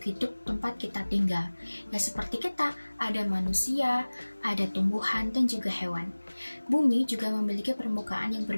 hidup tempat kita tinggal. Ya, seperti kita, ada manusia, ada tumbuhan, dan juga hewan. Bumi juga memiliki permukaan yang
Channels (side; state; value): both; inverted; correlation -1.00